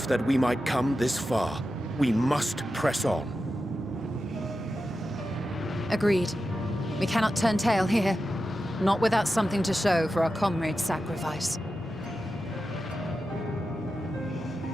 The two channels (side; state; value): both; normal; correlation 0.91